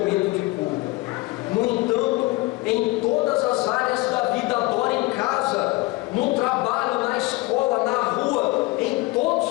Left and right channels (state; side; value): quieter; right; 22.1 dB